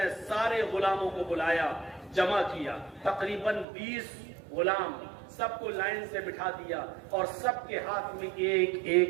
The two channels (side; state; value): left; drops out; at 3.7 s